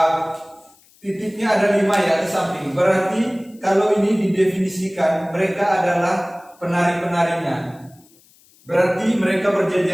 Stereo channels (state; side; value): noise; left; hiss, 30 dB below the sound